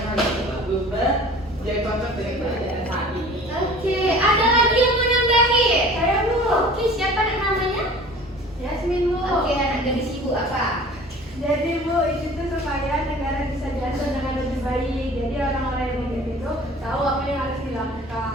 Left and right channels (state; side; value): normal; both; correlation 0.45